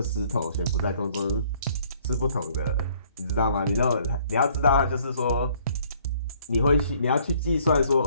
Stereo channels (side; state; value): both; inverted; correlation -0.61